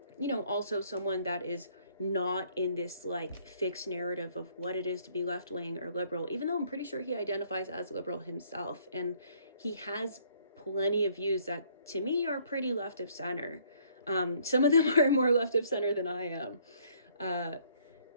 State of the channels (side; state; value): both; inverted; correlation -0.63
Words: you know, also someone that is not in this like fixed narrative of what it is to be left-wing or liberal, even though I'm pretty sure he identifies as liberal himself. And he has plenty of views that to me are pretty left of center. Some of them are more left of center than I am.